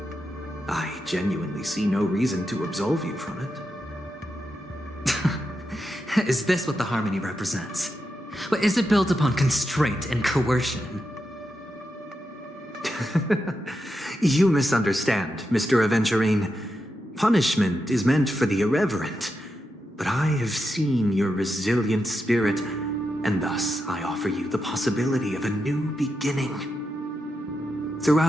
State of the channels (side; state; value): both; normal; correlation 0.87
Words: I genuinely see no reason to absolve you from it. Is this what the Harmony represents? But is it built upon constraint and coercion? You misunderstand, Mr. Aventurine. Punishment is meant for the irreverent, but I have seen your resilient spirit, and thus I offer you the possibility of a new beginning.